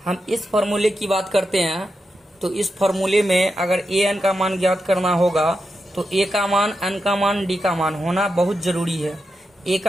हम इस फार्मूले की बात करते हैं तो इस फार्मूले में अगर an का मान ज्ञात करना होगा तो a का मान, n का मान, d का मान होना बहुत जरूरी है। a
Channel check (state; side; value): normal; both; correlation 0.87